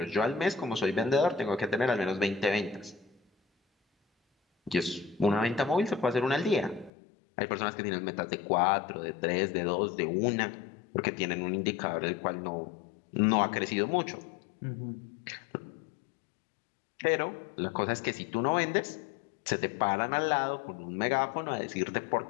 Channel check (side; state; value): right; drops out; at 6.9 s